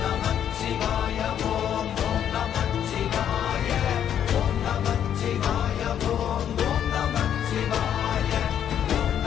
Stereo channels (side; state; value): right; quieter; 9.6 dB